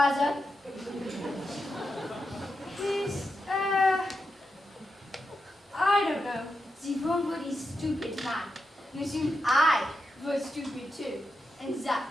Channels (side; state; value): both; normal; correlation 0.87